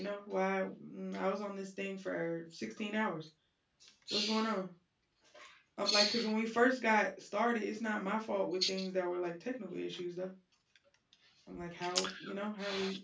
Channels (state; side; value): identical; both; correlation 1.00